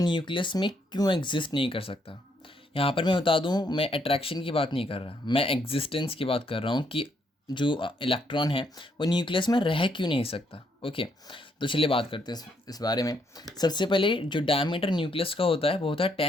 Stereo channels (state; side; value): normal; both; correlation 0.73